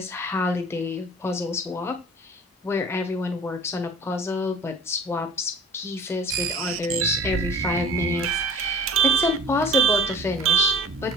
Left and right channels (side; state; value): both; normal; correlation 0.44